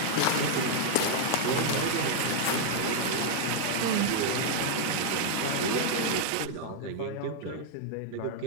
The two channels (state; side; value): different; both; correlation 0.00